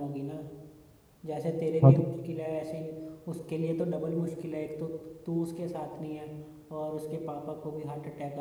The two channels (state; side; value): identical; both; correlation 1.00